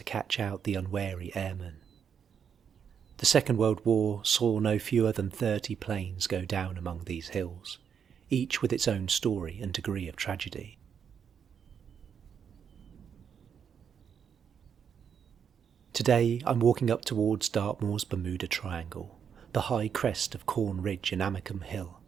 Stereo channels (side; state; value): left; quieter; 7.5 dB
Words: catch out the unwary airmen. The Second World War saw no fewer than 30 planes go down among these hills, each with its own story and degree of tragedy. Today I'm walking up towards Dartmoor's Bermuda Triangle, the high crest of Corn Ridge and Amicombe Hill,